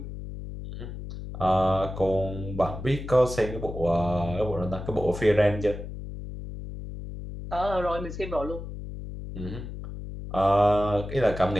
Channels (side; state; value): left; noise; hum, 9 dB below the sound